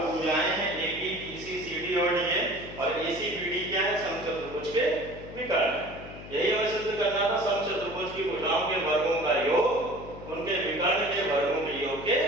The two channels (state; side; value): noise; left; hum, 14 dB below the sound